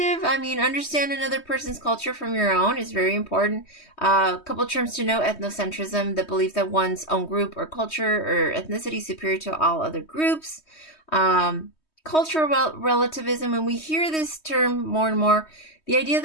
I mean, understand another person's culture from your own is very important. A couple of terms to know: ethnocentrism, the belief that one's own group or culture or ethnicity is superior to all other groups. Cultural relativism, and we hear this term more and more, the idea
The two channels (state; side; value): late; right; 3.2 ms